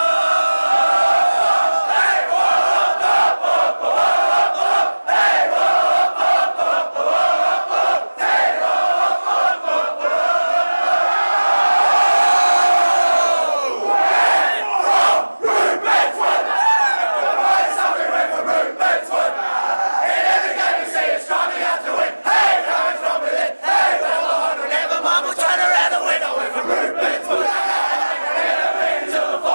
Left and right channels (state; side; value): inverted; both; correlation -1.00